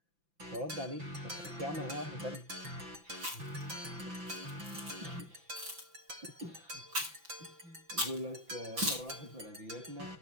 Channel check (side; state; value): left; late; 5.9 ms